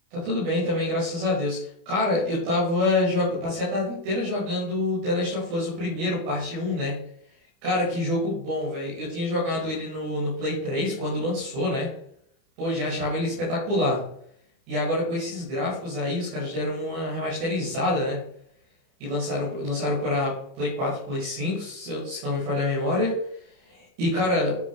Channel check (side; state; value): left; late; 30 ms